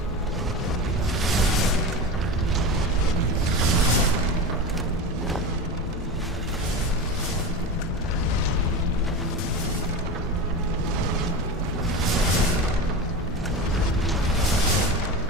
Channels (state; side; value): normal; both; correlation 0.25